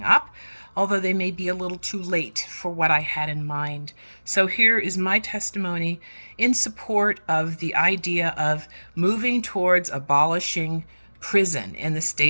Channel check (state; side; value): inverted; both; correlation -1.00